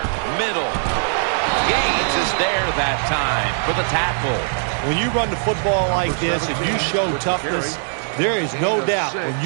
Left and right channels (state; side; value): silent; left; digital silence